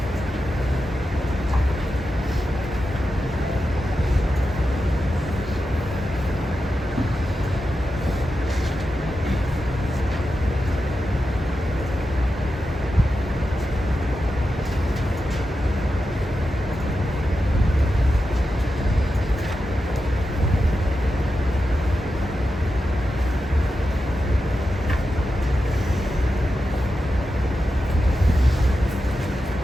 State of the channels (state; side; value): normal; both; correlation 0.90